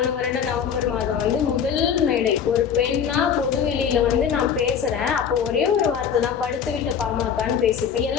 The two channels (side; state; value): right; quieter; 7.6 dB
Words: வருடம் நவம்பர் மாதம் வந்து முதல் மேடை ஒரு பெண்ணா பொதுவெளியில வந்து நான் பேசுறேன். அப்போ ஒரே ஒரு வார்த்தை தான், படுத்து விட்ட பாமகன்னு பேசிப்பேன்.